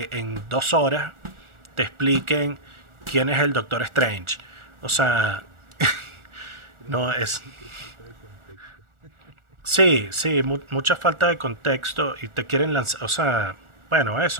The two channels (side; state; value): left; late; 1.4 ms